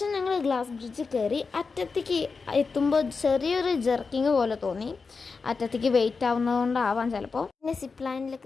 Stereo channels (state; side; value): quieter; right; 4.7 dB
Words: ഞങ്ങൾ ഗ്ലാസ് ബ്രിഡ്ജ് കയറി. അറ്റത്തേക്ക് എത്തുമ്പോൾ ചെറിയൊരു ജെർക്കിങ് പോലെ തോന്നി. അറ്റത്തേക്ക് വെയിറ്റ് ആവുന്നതുകൊണ്ടാവാം ചിലപ്പോൾ. പിന്നെ സിപ്പ് ലൈനിൽ